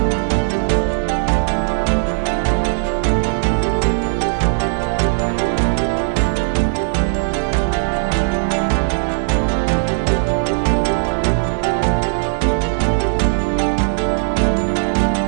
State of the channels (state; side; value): silent; left; 57 dB below the other